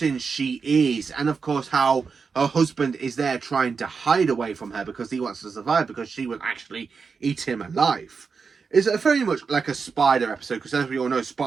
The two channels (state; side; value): quieter; left; 5.3 dB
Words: she is, and of course how her husband is there trying to hide away from her because he wants to survive, because she will actually eat him alive. It's very much like a spider episode, because as we all know,